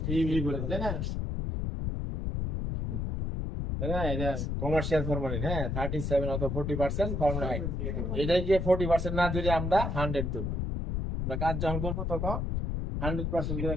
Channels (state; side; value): noise; left; rumble, 1 dB below the sound